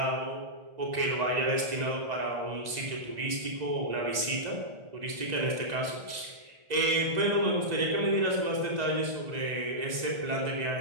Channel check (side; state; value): left; late; 1.9 ms